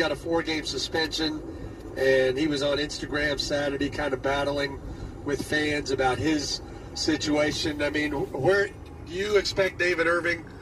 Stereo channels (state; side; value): identical; both; correlation 1.00